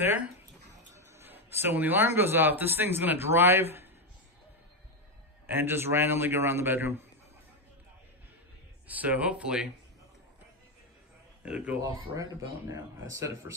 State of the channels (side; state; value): both; normal; correlation 0.07